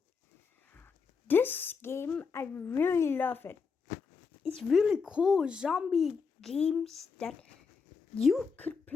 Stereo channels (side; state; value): right; quieter; 5.4 dB